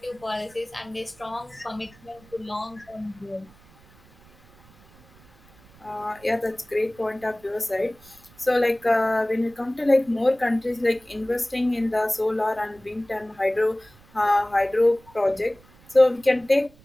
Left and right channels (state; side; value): noise; right; rumble, 27 dB below the sound